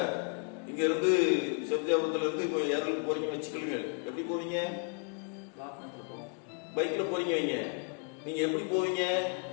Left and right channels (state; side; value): quieter; right; 38.5 dB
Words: இங்க இருந்து செப்தியாபுரத்துல இருந்து இப்போ ஏரல் போறீங்க வச்சுக்கொள்ளுங்க. எப்படி போவீங்க? பைக்ல போறீங்க வைங்க. நீங்க எப்படி போவீங்க?